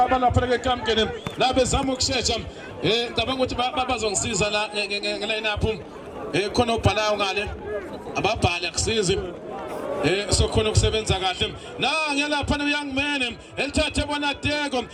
ke kamkeni la bezama ukushesha ngicabanga ukuthi bazongisiza la ngeline up khona ubhalayo ngale ababhali akusizi sokhona ukusebenza kahle ngiyalapha noyoung man elithathe bona Deko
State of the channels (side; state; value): both; identical; correlation 1.00